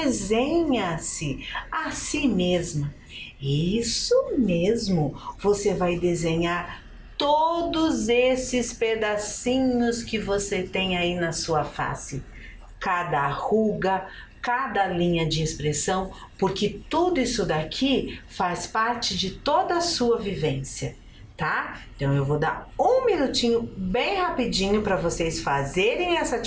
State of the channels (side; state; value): both; identical; correlation 1.00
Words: a si mesma. Isso mesmo, você vai desenhar todos esses pedacinhos que você tem aí na sua face. Cada ruga, cada linha de expressão, porque tudo isso daqui faz parte de toda a sua vivência, tá? Então eu vou dar um minutinho bem rapidinho para vocês fazerem essa